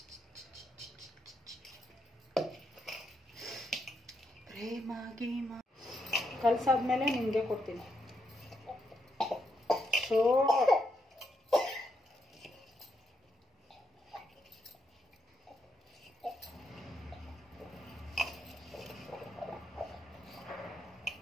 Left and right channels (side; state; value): both; normal; correlation 0.80